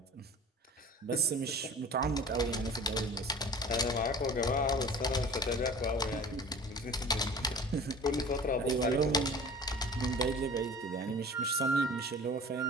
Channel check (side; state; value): both; normal; correlation 0.42